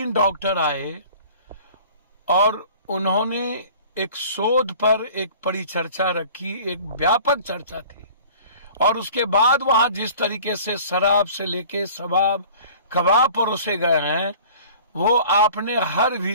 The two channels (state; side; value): inverted; both; correlation -0.47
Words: डॉक्टर आए और उन्होंने एक शोध पर एक परिचर्चा रखी, एक व्यापक चर्चा थी। और उसके बाद वहां जिस तरीके से शराब से लेके शबाब कबाब परोसे गए हैं, वो आपने हर